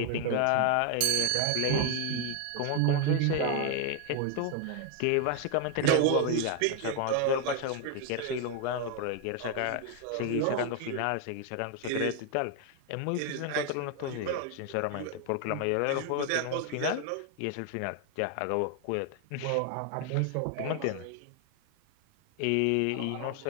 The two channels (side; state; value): both; different; correlation 0.01